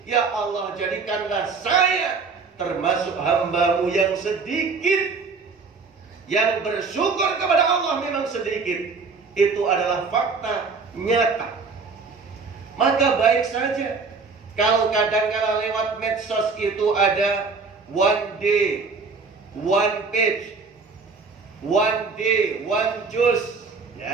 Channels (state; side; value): quieter; left; 4.7 dB